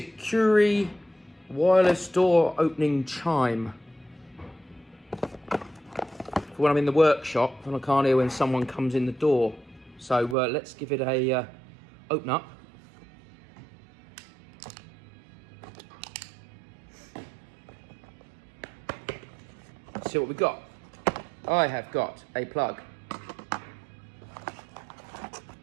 wireless door opening chime. For when I'm in the workshop and I can't hear when someone comes in the door. So let's give it a open up. Let's see what we've got. I have got a plug.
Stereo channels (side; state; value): left; drops out; at 10.4 s